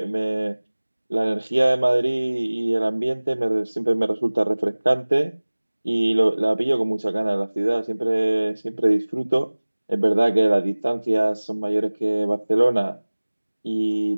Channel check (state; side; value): inverted; both; correlation -1.00